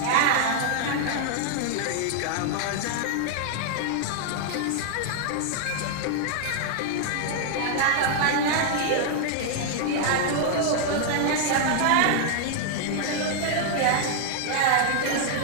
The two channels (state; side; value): different; both; correlation 0.00